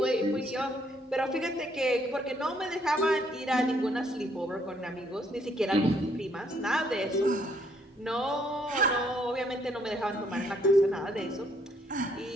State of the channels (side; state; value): both; normal; correlation 0.69